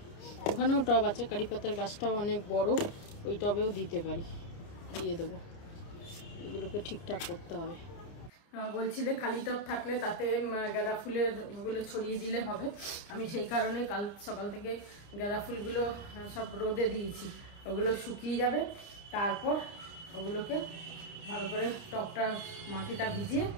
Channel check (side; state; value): right; late; 29 ms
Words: ওখানেও টব আছে, কারি পাতার গাছটাও অনেক বড়, ওই টবেও দিতে পারি, দিয়ে দেবো। এগুলোকে ঠিকঠাক করতে হবে। বলছিলে খালি টব থাকলে তাতে গাঁদা ফুলের ওগুলো ছড়িয়ে দিলে হবে। আমি সেই কারণে কাল সকাল থেকে গাঁদা ফুলগুলো সব রোদে দিয়েছি, ওগুলো শুকিয়ে যাবে, তারপর ওগুলোকে ভালো করে টবটা মাটিটা ভিজিয়ে